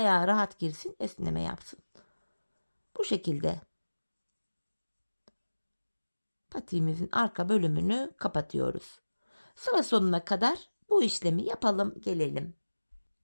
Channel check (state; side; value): inverted; both; correlation -1.00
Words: rahat girsin, esneme yapsın. Bu şekilde patiğimizin arka bölümünü kapatıyoruz. Sıra sonuna kadar bu işlemi yapalım, gelelim.